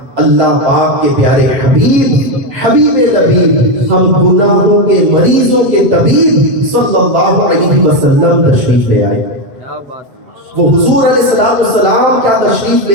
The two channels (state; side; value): late; left; 7.6 ms